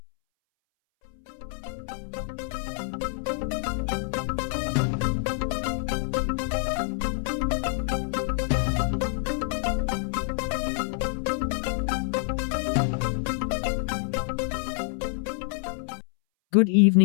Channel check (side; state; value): right; silent; 60 dB below the other